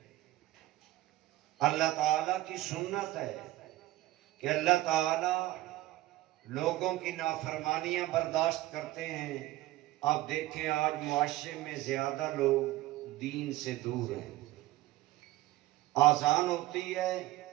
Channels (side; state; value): left; quieter; 16.9 dB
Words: اللہ تعالیٰ کی سنت ہے کہ اللہ تعالیٰ لوگوں کی نافرمانیاں برداشت کرتے ہیں. آپ دیکھیں آج معاشرے میں زیادہ لوگ دین سے دور ہیں. آذان ہوتی ہے،